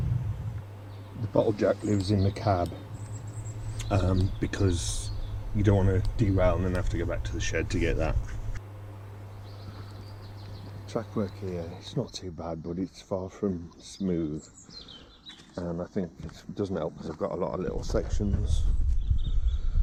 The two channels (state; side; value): identical; both; correlation 1.00